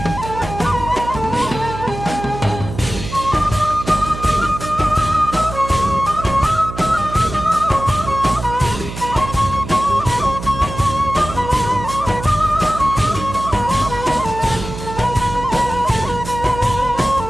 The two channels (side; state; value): right; noise; hum, 10 dB below the sound